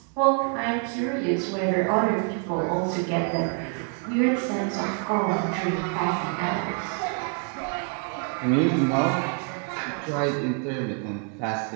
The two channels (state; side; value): quieter; left; 39.6 dB